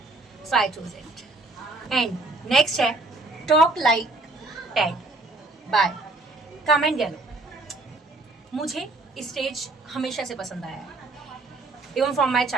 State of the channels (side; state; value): left; quieter; 3.0 dB